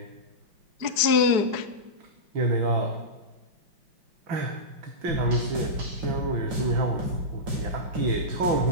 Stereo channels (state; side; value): late; left; 4.8 ms